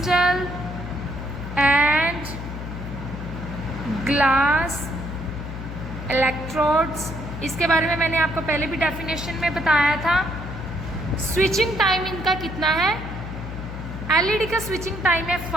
and glass electrodes. इसके बारे में मैंने आपको पहले भी डेफिनेशन में बताया था. स्विचिंग टाइम इनका कितना है? LED का स्विचिंग टाइम है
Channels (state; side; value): noise; left; hum, 8 dB below the sound